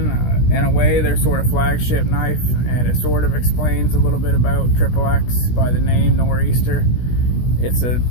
in a way, their sort of flagship knife, and it sort of explains a little bit about XXX by the name Nor'easter. It's a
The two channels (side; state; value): right; late; 16 ms